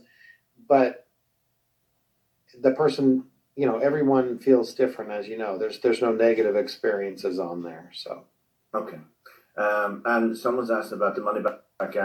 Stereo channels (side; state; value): both; identical; correlation 1.00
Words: But the person, everyone feels different, as you know. There's no negative experiences on there, so. Okay. And someone's asked about the money back